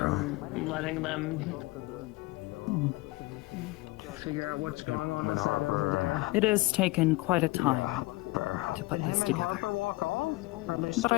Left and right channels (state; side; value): quieter; right; 21.3 dB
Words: Letting them figure out what's going on inside over there. It has taken quite a time to put this together. But